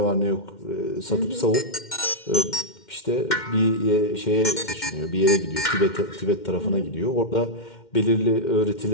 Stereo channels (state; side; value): late; right; 2.1 ms